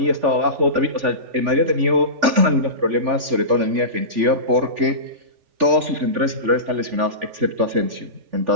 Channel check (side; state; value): left; late; 3.4 ms